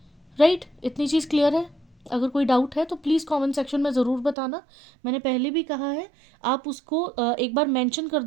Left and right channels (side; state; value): left; drops out; at 4.4 s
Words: राइट। इतनी चीज़ क्लियर है। अगर कोई डाउट है तो प्लीज़ कमेंट सेक्शन में ज़रूर बताना। मैंने पहले भी कहा है आप उसको एक बार मेंशन कर